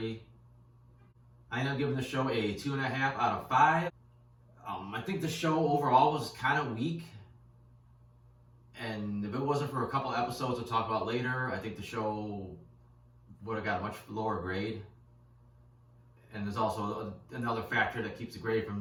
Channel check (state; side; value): identical; both; correlation 1.00